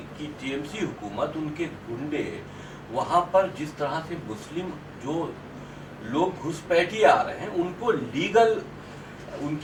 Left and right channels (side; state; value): both; identical; correlation 1.00